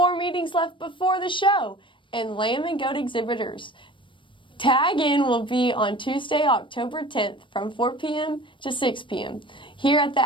meetings left before the show. And lamb and goat exhibitors, tag in will be on Tuesday, October 10th from 4 p.m. to 6 p.m. here at the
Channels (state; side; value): late; right; 0.24 ms